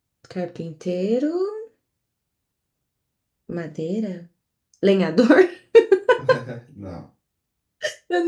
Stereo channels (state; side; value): identical; both; correlation 1.00